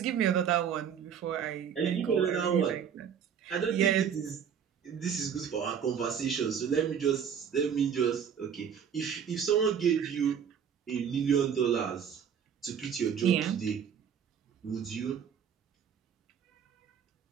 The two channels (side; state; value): left; quieter; 7.8 dB